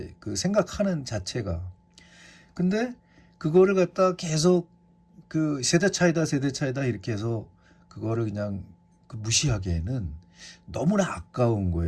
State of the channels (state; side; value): identical; both; correlation 1.00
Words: 그 생각하는 자체가. 근데 그거를 갖다 계속 그 세대 차이다 이렇게 해서 그거를 그냥 그 무시하기에는 너무나 아까운